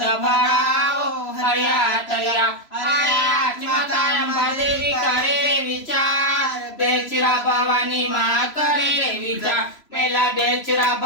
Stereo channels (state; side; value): late; right; 3.0 ms